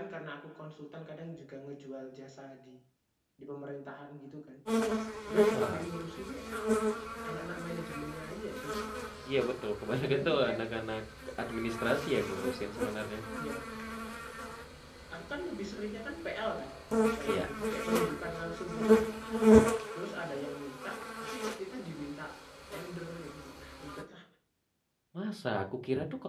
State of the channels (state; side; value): identical; both; correlation 1.00